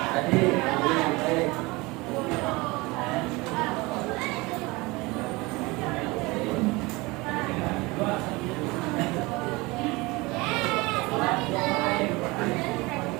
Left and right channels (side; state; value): left; quieter; 23.5 dB